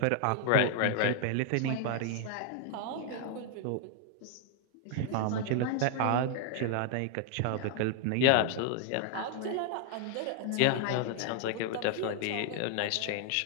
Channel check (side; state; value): both; different; correlation 0.00